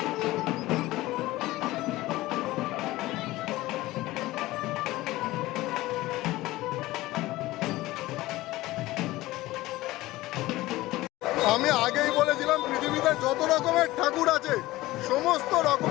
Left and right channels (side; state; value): right; quieter; 18.0 dB